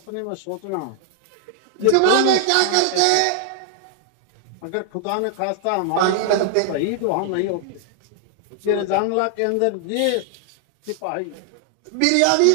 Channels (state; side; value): different; both; correlation 0.00